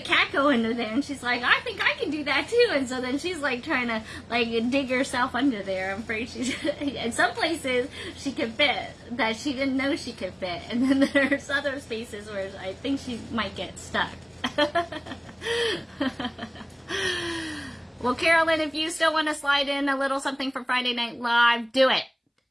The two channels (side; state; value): both; identical; correlation 1.00